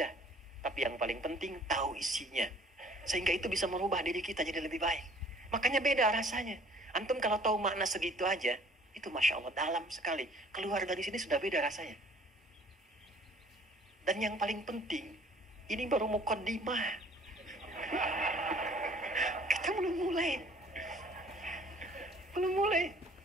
Tapi yang paling penting, tahu isinya. Sehingga itu bisa merubah diri kita jadi lebih baik. Makanya beda rasanya. Antum kalau tahu makna segitu aja, itu Masya Allah dalam sekali. Keluar dari sini sudah beda rasanya. Dan yang paling penting, ini baru muqaddimah. Kita belum mulai. Belum mulai.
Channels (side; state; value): both; normal; correlation 0.55